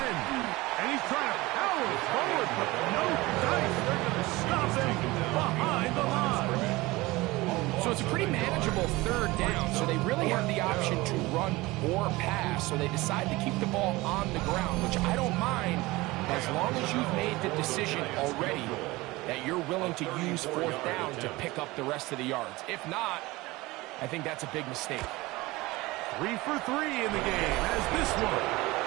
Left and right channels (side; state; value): left; quieter; 20.9 dB